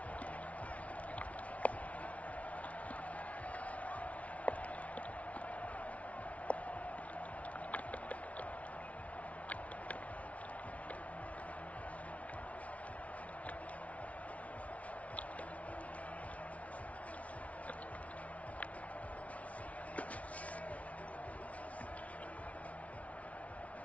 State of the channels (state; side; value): late; right; 0.066 ms